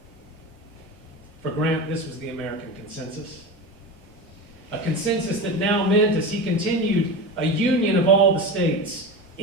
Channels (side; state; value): both; normal; correlation 0.25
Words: For Grant, this was the American consensus. A consensus that now meant, as he continued, a union of all the states,